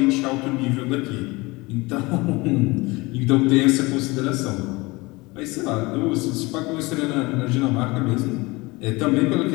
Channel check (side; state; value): right; quieter; 23.4 dB